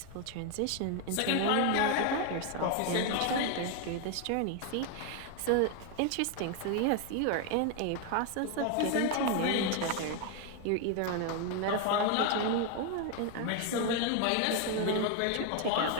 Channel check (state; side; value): different; both; correlation 0.01